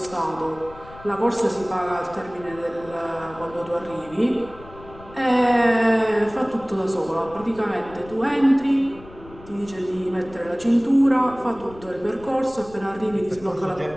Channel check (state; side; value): noise; left; rumble, 20 dB below the sound